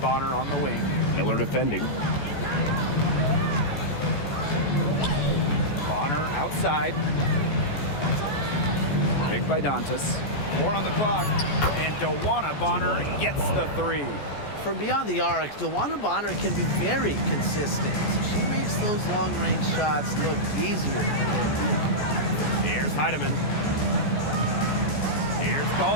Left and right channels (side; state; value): right; late; 14 ms